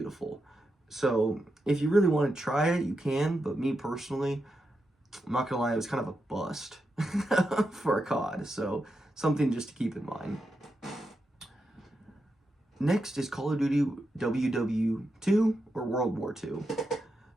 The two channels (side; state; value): both; normal; correlation 0.86